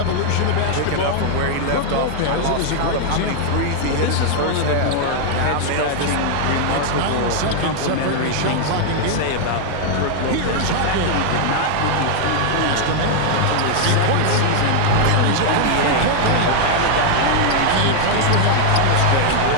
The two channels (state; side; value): different; both; correlation 0.00